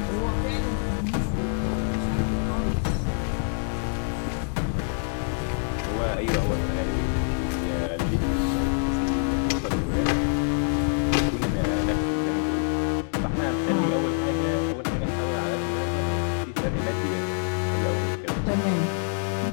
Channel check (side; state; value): right; silent; 59 dB below the other